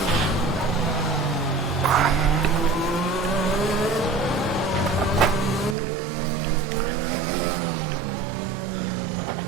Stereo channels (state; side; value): drops out; left; at 5.8 s